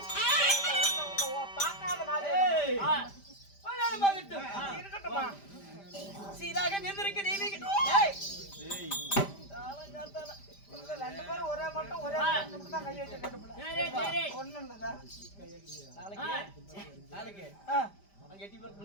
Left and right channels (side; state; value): right; late; 5.0 ms